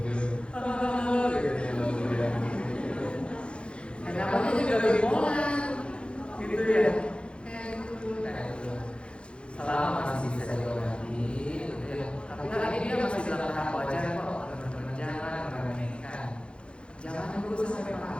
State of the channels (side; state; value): right; late; 0.056 ms